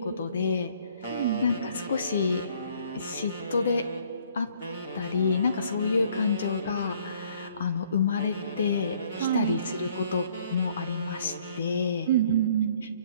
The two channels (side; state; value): both; inverted; correlation -0.61